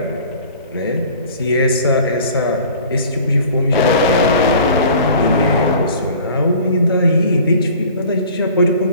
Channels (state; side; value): inverted; both; correlation -0.46